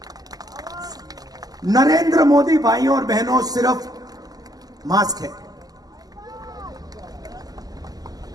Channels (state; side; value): late; left; 0.18 ms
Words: नरेंद्र मोदी भाइयों और बहनों सिर्फ मास्क है,